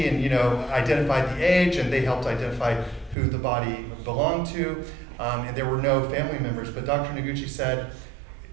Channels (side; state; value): left; drops out; at 3.2 s